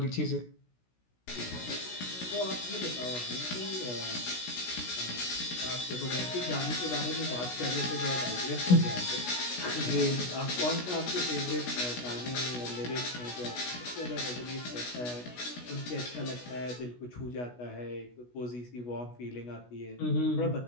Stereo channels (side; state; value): right; late; 16 ms